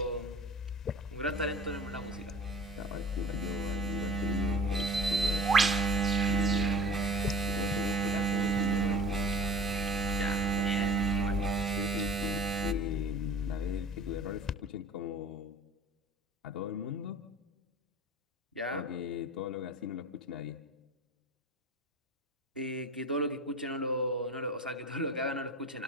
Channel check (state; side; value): normal; both; correlation 0.42